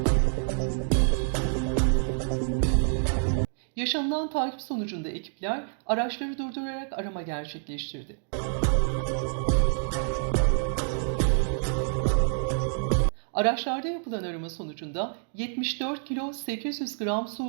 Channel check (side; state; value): left; silent; digital silence